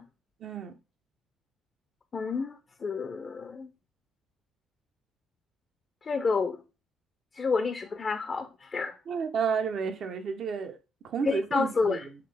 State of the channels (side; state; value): both; normal; correlation 0.79